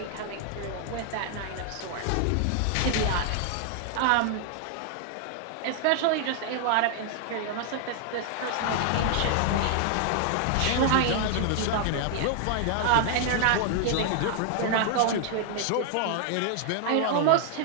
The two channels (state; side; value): different; both; correlation 0.00